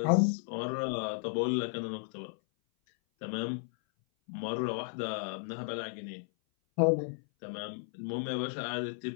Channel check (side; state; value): right; silent; 55 dB below the other